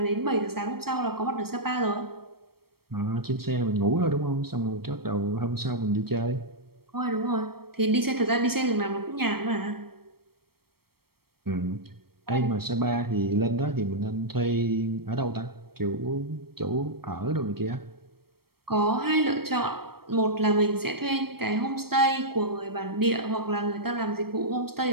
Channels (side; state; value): left; late; 0.94 ms